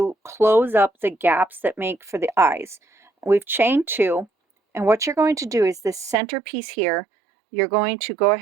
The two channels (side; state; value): left; drops out; at 6.2 s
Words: close up the gaps that make for the eyes. We've chained 2, and what you're going to do is this centerpiece here, you're going to go